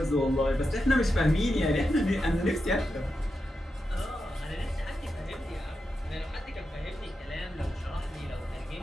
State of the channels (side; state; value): both; normal; correlation 0.88